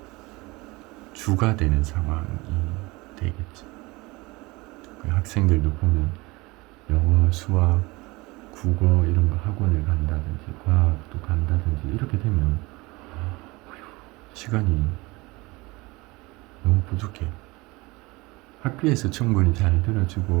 주가 되는 상황이 되겠죠. 그 학생들도 보면 영어, 수학, 국어 이런 거 학원을 간다든지 과학도 간다든지 이렇게 되면 시간이 너무 부족해. 학교에서 충분히 잘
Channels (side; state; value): left; quieter; 23.0 dB